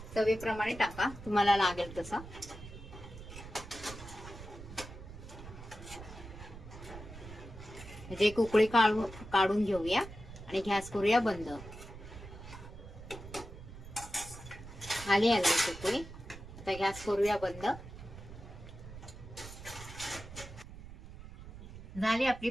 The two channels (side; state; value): right; noise; rumble, 14 dB below the sound